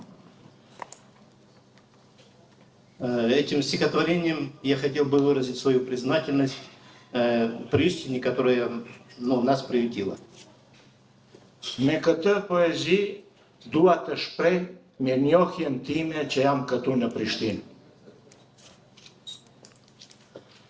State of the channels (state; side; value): identical; both; correlation 1.00